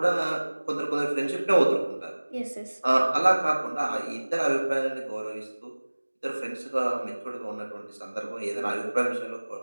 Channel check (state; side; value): inverted; both; correlation -1.00